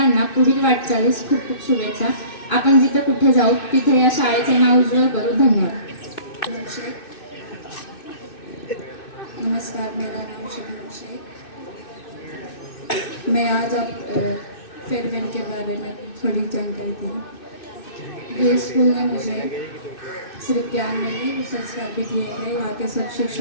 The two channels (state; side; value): late; right; 2.6 ms